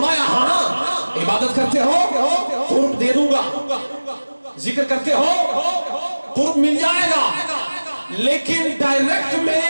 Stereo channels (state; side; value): inverted; both; correlation -1.00